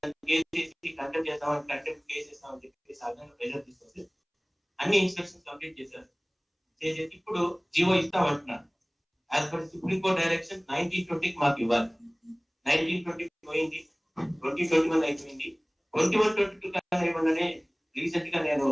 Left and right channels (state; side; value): identical; both; correlation 1.00